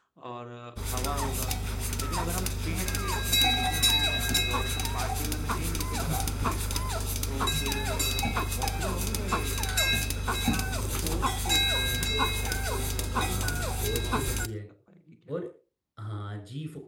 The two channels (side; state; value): both; identical; correlation 1.00